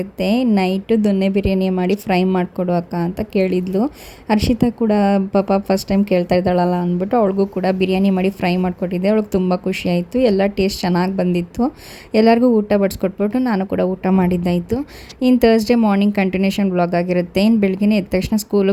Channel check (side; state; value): both; identical; correlation 1.00